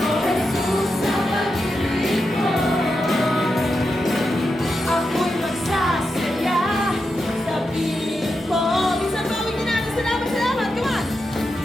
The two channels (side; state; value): both; normal; correlation 0.87